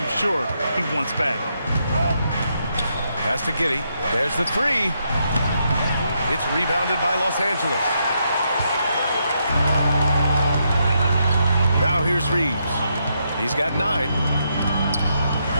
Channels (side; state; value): both; inverted; correlation -0.79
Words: sure he wants back. Pass to Giddey. There's the three. It's rebounded by Los Angeles. Now here's Reeves. He's got 9.